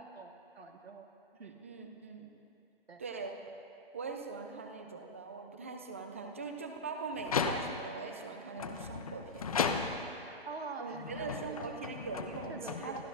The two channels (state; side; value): normal; both; correlation -0.08